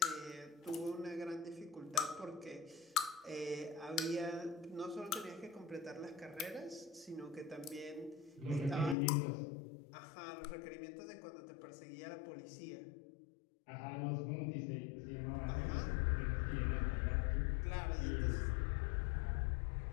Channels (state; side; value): drops out; right; at 9.0 s